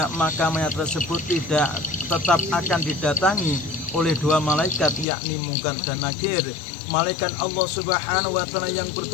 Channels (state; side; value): drops out; right; at 5.1 s